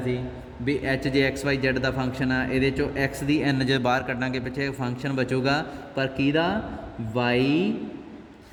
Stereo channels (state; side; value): identical; both; correlation 1.00